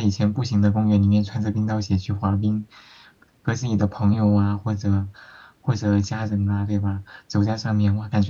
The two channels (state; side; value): identical; both; correlation 1.00